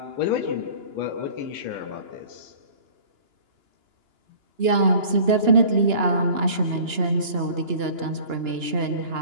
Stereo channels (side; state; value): left; late; 2.9 ms